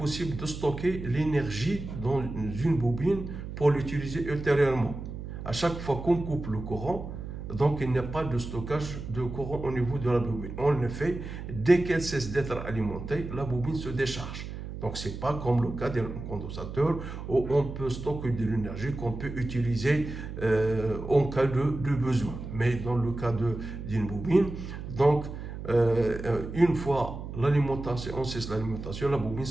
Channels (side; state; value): right; noise; hum, 9 dB below the sound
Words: de stocker l'énergie dans une bobine pour l'utiliser ultérieurement. À chaque fois qu'on coupe le courant, donc il n'y a pas de stockage de courant au niveau de la bobine. En effet, dès qu'elle cesse d'être alimentée, la bobine se décharge. Donc ce n'est pas comme le cas d'un condensateur où on peut stocker de l'énergie qu'on peut utiliser en cas de besoin. Mais dans le cas d'une bobine, donc une fois l'alimentation, on cesse l'alimentation, la bobine